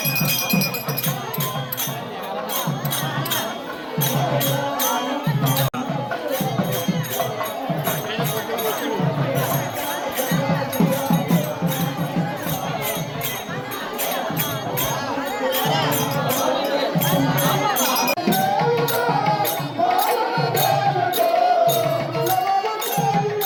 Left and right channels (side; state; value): both; identical; correlation 1.00